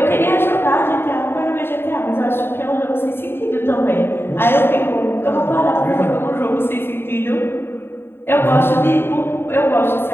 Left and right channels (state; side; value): late; right; 0.11 ms